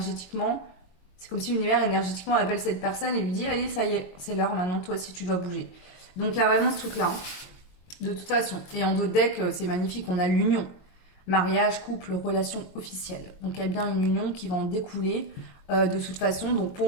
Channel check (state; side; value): late; right; 22 ms